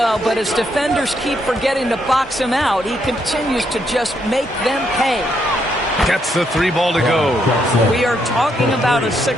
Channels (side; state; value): both; normal; correlation 0.76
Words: but as defenders keep forgetting to box him out, he continues to just make them pay. Gets the 3 ball to go. We are talking about a